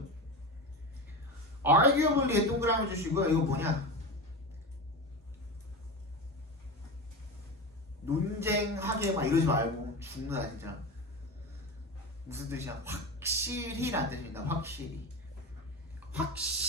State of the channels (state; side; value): normal; both; correlation 0.24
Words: arguably에 동그라미 주시고요. 이거 뭐냐? 논쟁하게 막 이러지 말고 죽는다 진짜. 무슨 뜻이야? 확실히란 뜻입니다.